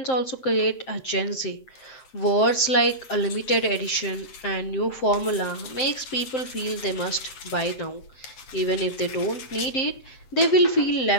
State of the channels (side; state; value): right; late; 7.7 ms